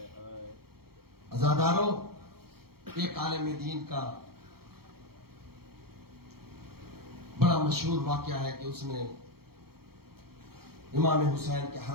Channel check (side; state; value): left; late; 0.94 ms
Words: عزاداروں، ایک عالم دین کا بڑا مشہور واقعہ ہے کہ اس نے امام حسین کے